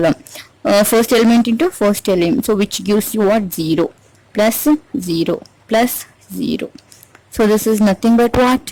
first element into first element. So which gives you what? 0 plus 0 plus 0. So this is nothing but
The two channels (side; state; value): both; identical; correlation 1.00